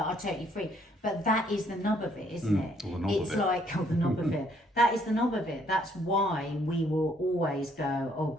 are totally free, but that is the nub of it, isn't it? Or the knob It's of it. like, the knob of it. That is the knob of it. That's why we will always go, oh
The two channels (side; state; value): both; normal; correlation 0.66